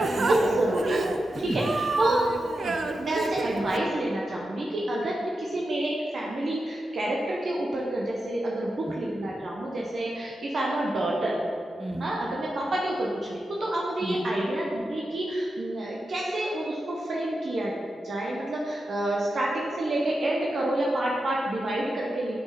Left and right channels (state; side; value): normal; both; correlation 0.89